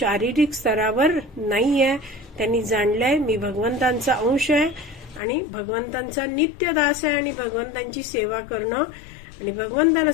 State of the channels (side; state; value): right; drops out; at 5.2 s